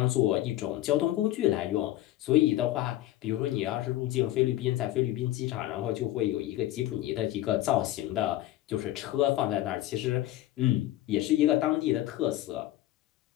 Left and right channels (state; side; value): quieter; right; 14.7 dB